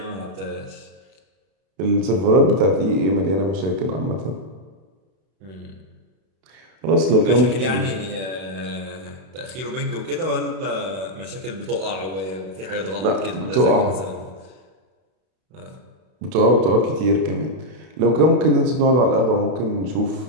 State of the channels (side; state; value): left; late; 32 ms